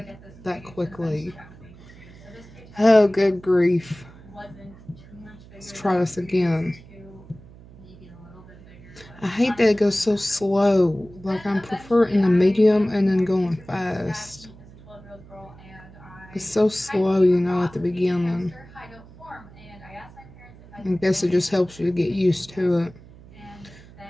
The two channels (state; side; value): noise; right; hum, 21 dB below the sound